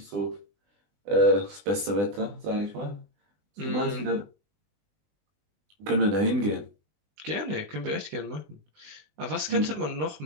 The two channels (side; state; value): left; late; 20 ms